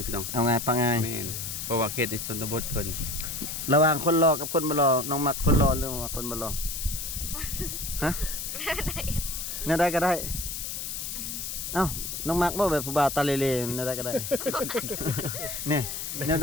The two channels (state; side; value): noise; left; hiss, 5 dB below the sound